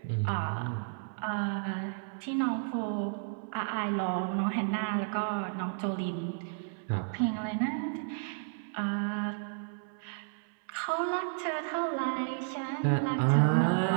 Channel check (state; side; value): silent; left; 56 dB below the other